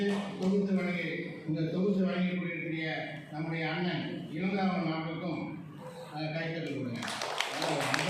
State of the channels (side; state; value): both; identical; correlation 1.00